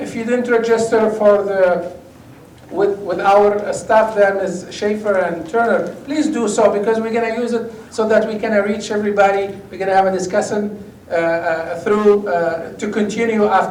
you didn't register for with our staff there, Ms. Schaefer and Turner, please do so, because we're going to use it so that we can reach everybody. We're going to have a discussion to continue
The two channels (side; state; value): both; identical; correlation 1.00